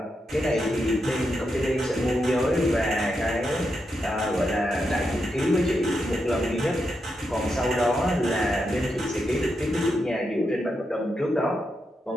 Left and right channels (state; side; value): normal; both; correlation 0.85